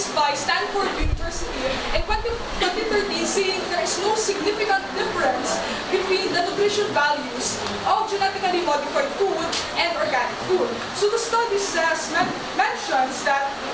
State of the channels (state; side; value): identical; both; correlation 1.00